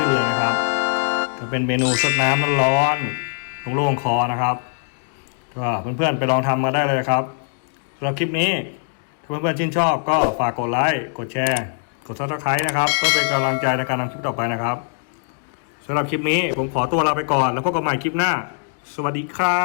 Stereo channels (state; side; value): silent; right; 61 dB below the other